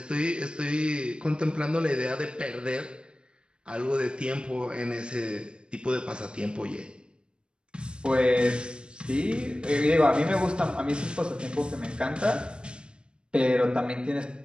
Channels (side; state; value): left; late; 0.054 ms